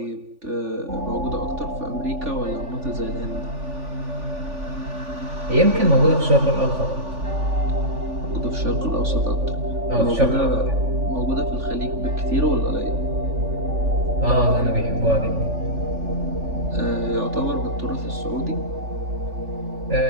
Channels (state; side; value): late; left; 3.5 ms